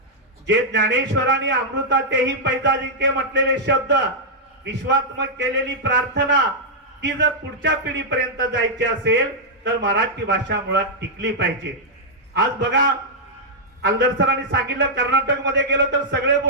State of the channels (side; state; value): both; normal; correlation -0.07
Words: जे ज्ञानेश्वरांनी अमृतातेही पैजा जिंके म्हटलेले शब्द, विश्वात्मक केलेली प्रार्थना, ती जर पुढच्या पिढीपर्यंत जायची असेल तर मराठी भाषा मुळात टिकली पाहिजे. आज बघा, आलदर सरांनी सांगितलं कर्नाटक मध्ये गेलो तर सगळे